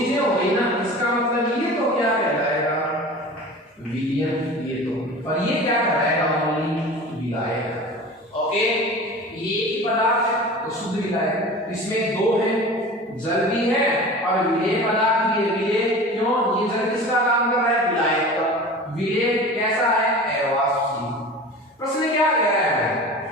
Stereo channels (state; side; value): normal; both; correlation 0.37